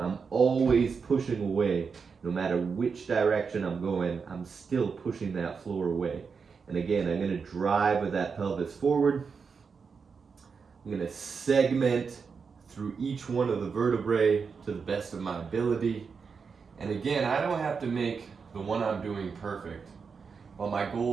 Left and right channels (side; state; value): left; quieter; 5.6 dB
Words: I'm always pushing away. No matter which direction I'm going, I'm still pushing that floor away. And again, I'm going to drive with that pelvis forward. I'm going to segment through each one of the vertebrae to the best of my ability. And again, I don't have to make the one I'm doing perfect. Well, my